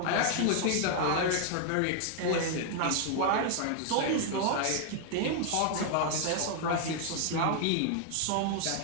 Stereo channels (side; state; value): both; different; correlation 0.00